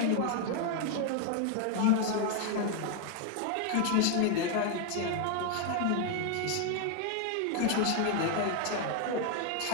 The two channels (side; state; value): both; different; correlation 0.01